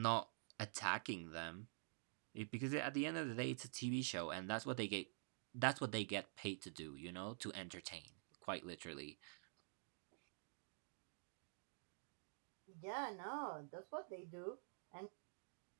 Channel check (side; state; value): left; silent; digital silence